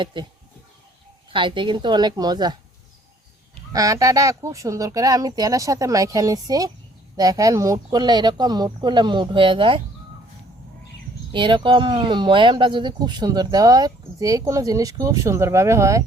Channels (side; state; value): both; normal; correlation 0.60